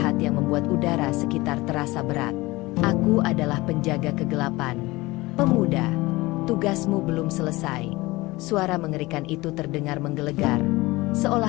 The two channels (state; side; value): quieter; right; 21.0 dB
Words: yang membuat udara sekitar terasa berat. Aku adalah penjaga kegelapan. Pemuda, tugasmu belum selesai. Suara mengerikan itu terdengar menggelegar,